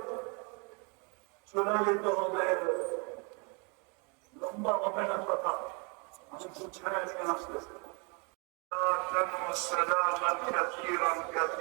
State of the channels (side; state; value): left; quieter; 33.3 dB